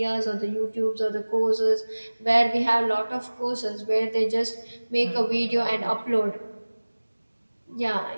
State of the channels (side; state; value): both; inverted; correlation -1.00